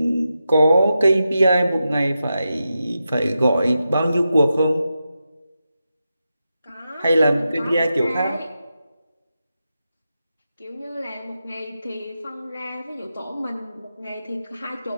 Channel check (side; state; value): both; inverted; correlation -0.89